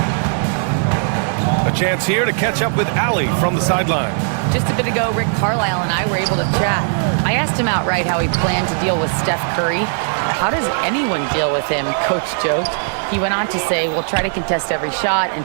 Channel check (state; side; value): silent; left; digital silence